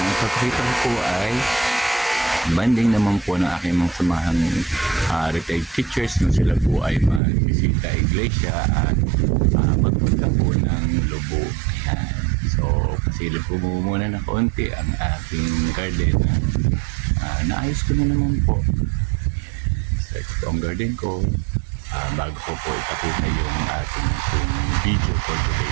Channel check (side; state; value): left; drops out; at 7.2 s